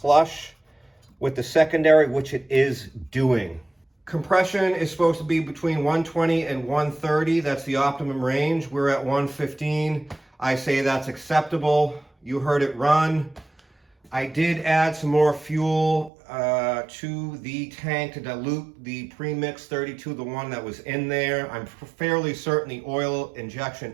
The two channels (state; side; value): drops out; left; at 16.1 s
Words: with the secondary, which it is doing. Compression is supposed to be between 120 and 130. That's the optimum range. We're at 115. I say that's acceptable. You heard it run. I did add some more fuel to the tank to dilute the premix 32, the one that was in there. I'm fairly certain the oil injection